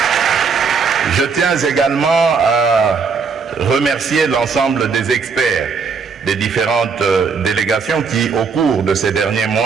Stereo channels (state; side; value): quieter; left; 5.4 dB